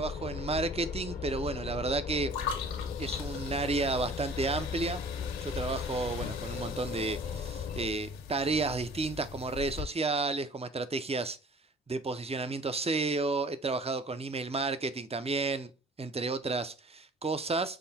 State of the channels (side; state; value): both; normal; correlation 0.48